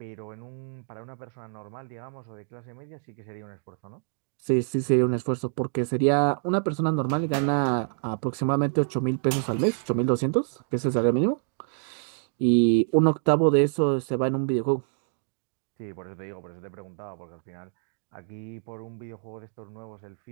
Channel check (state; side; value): silent; left; digital silence